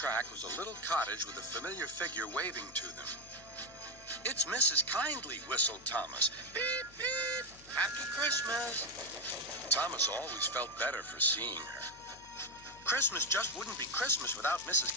was a little cottage with a familiar figure waving to them. "It's Mrs. Kindly," whistled Thomas. "Beep, beep. Happy Christmas." Thomas always felt better for seeing her. Christmas just wouldn't be Christmas without Mrs.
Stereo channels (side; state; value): left; noise; hum, 23 dB below the sound